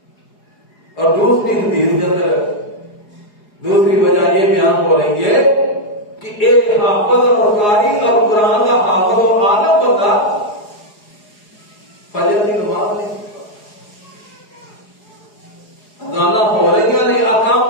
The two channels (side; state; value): right; late; 4.8 ms